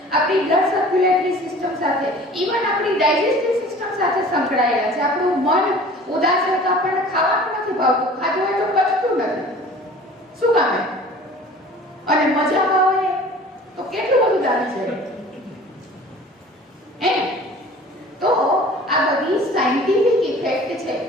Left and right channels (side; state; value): both; normal; correlation 0.45